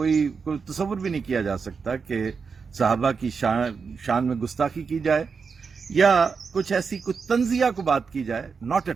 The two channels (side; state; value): left; quieter; 5.4 dB